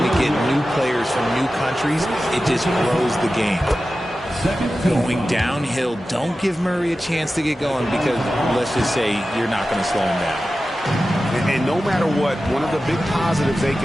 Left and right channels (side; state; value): both; normal; correlation 0.94